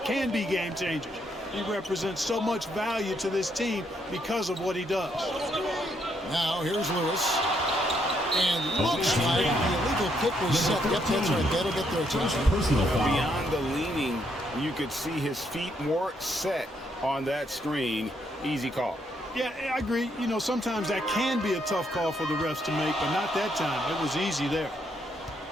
can be game changers. He represents so much value to this team because of what he does. Now here's Lewis. And looks like the illegal kick was set. Yep, that's right. That'll get their attention. Beyond the leaning, you could see his feet more set on that screen. Easy call. Yeah, I agree. You know, sometimes that can be a tough call for the refs to make, but not that time. It was easy there.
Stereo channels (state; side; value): normal; both; correlation 0.74